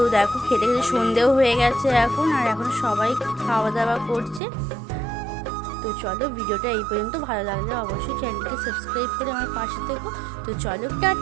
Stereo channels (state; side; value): drops out; left; at 4.4 s